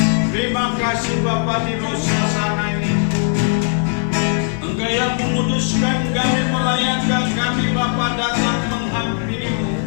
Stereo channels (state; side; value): silent; right; 64 dB below the other